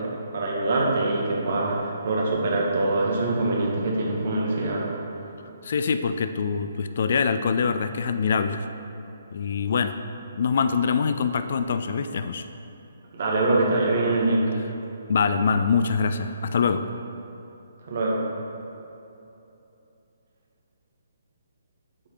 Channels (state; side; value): inverted; both; correlation -0.71